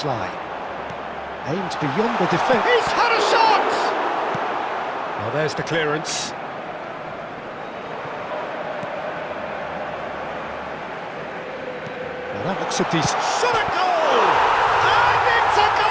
Aimed beyond the defence. He's had a shot! Well, there's the clearance. Well, that looks a decent... Shot at goal! And it's a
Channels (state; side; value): identical; both; correlation 1.00